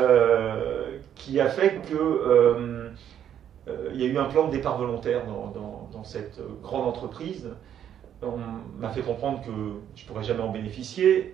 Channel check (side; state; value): left; quieter; 9.8 dB